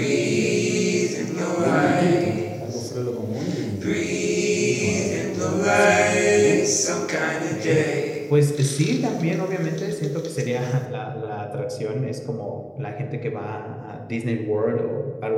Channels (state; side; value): identical; both; correlation 1.00